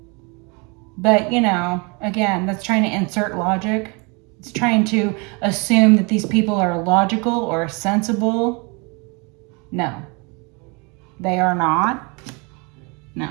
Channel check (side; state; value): left; quieter; 30.2 dB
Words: But, you know, again, that's trying to insert logic. It's trying to assume that these people are logical or sensible. No. They are not. No.